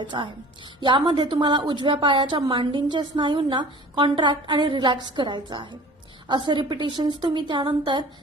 आहे. यामध्ये तुम्हाला उजव्या पायाच्या मांडींच्या स्नायूंना कॉन्ट्रॅक्ट आणि रिलॅक्स करायचं आहे. असे रिपिटेशन्स तुम्ही त्यानंतर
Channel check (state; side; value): normal; both; correlation 0.44